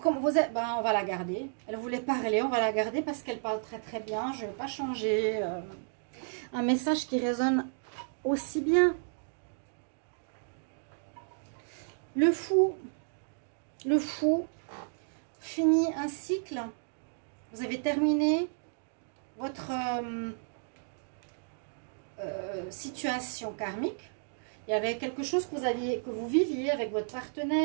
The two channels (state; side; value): silent; left; digital silence